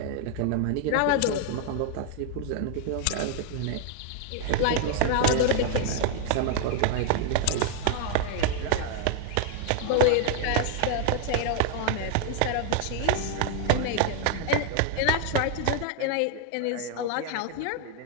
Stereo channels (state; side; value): different; both; correlation 0.00